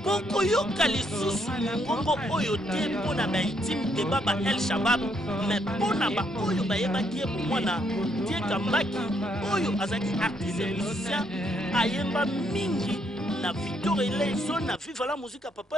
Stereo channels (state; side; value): normal; both; correlation 0.73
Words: Koko yoka lisusu ngongo oyo te mpona ba intime de Baba El Shabab mais mpona ba oyo bayebaki ye mwana tie kambaki oyo azaki artiste musicien ayemba mingi na Victor Eleison na Viva la musique